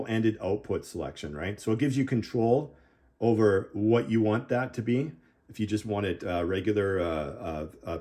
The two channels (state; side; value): identical; both; correlation 1.00